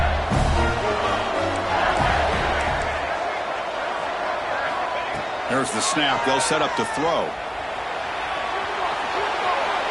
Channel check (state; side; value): identical; both; correlation 1.00